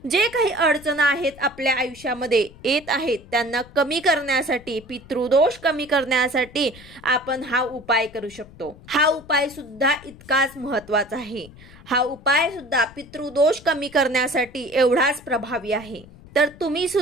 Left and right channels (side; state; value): left; noise; rumble, 21 dB below the sound